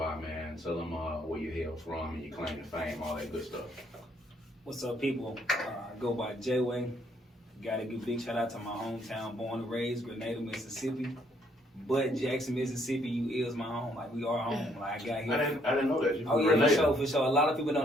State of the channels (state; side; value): normal; both; correlation 0.67